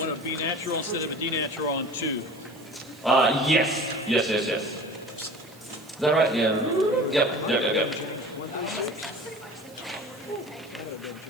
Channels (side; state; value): right; noise; hiss, 24 dB below the sound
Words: a B natural instead of a D natural on 2. Yes. Is that right? Yeah. Yep.